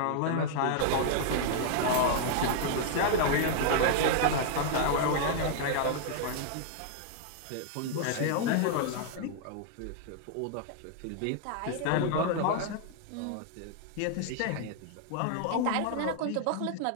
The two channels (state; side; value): different; both; correlation -0.01